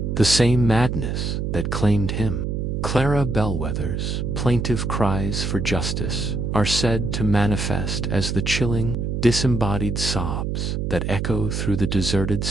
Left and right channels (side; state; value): right; noise; hum, 1 dB below the sound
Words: The same madness that claimed him. Clara Bellwether's plaintive cries for justice are said to manifest as the chilling, disembodied sobs that echo through the deserted